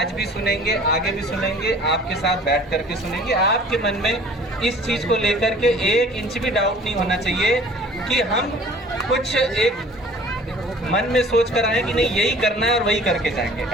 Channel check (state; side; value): normal; both; correlation 0.48